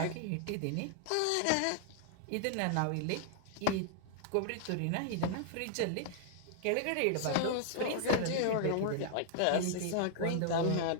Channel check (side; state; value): both; different; correlation -0.01